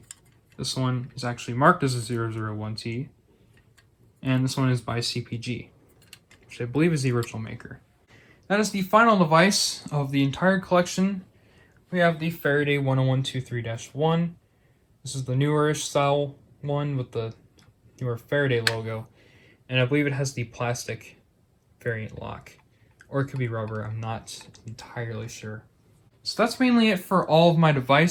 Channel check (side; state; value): both; identical; correlation 1.00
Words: This one is actually marked as a 001T. And this one is by CPG, which I believe is the original maker. That is the final device of the entire collection. We have the Faraday 10123-1. This is the newer-ish style one with the newer Faraday logo. And I believe it has the plastic variant lock. Or it could be rubber, I'm not entirely sure. So that's mainly it for all of my